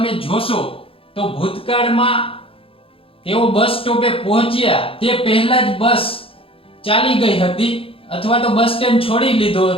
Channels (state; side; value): late; right; 0.27 ms